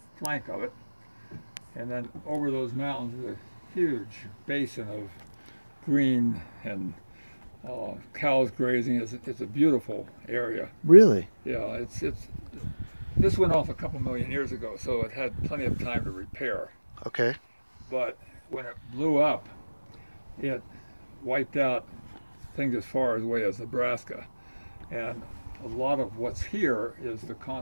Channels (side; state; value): both; inverted; correlation -1.00